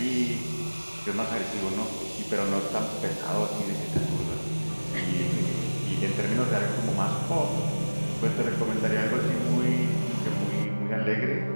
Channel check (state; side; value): inverted; both; correlation -1.00